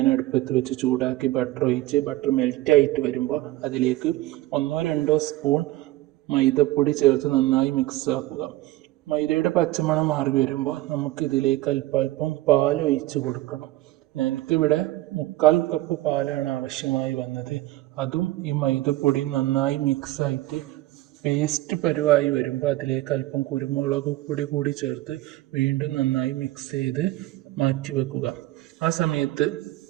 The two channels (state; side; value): quieter; left; 17.1 dB